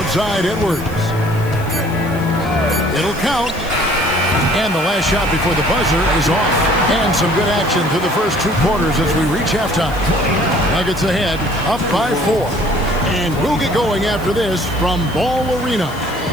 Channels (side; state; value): left; noise; hiss, 20 dB below the sound